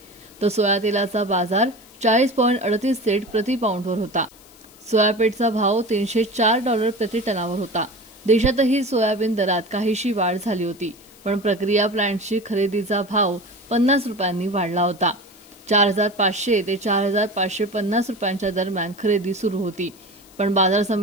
तर सोया तेलाचा बाजार $40.38 प्रति पाऊंडवर होता। सोयाबीनचा भाव $304 प्रति टनावर होता। देशातही सोयाबीन दरात काहीशी वाढ झाली होती, पण प्रक्रिया प्लांटची खरेदीचा भाव ₹50 वाढला होता। 4500 ते 4550 रुपयांच्या दरम्यान खरेदी सुरू होती, पण बाजार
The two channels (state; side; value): noise; left; hiss, 25 dB below the sound